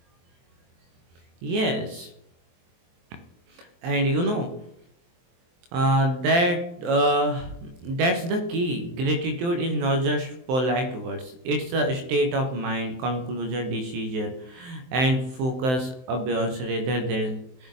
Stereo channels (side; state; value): left; late; 23 ms